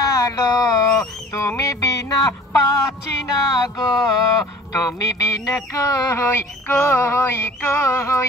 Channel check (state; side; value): normal; both; correlation 0.46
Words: লো তুমি বিনা পাচ্ছি না গো তুমি বিনা কই কই